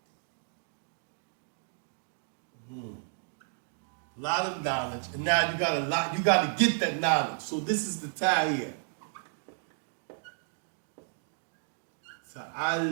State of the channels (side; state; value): left; silent; digital silence